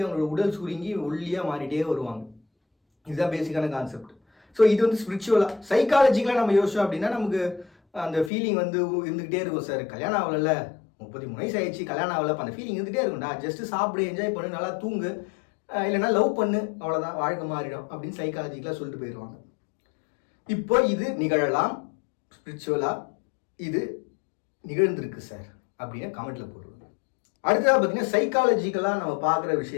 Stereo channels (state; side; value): drops out; right; at 8.3 s